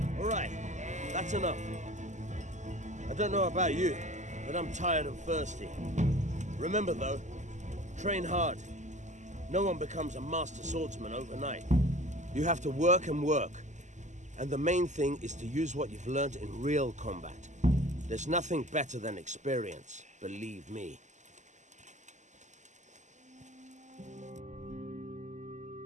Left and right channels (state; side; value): late; left; 0.34 ms